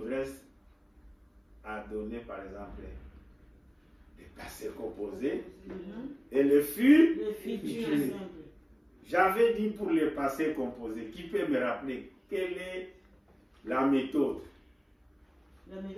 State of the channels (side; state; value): both; identical; correlation 1.00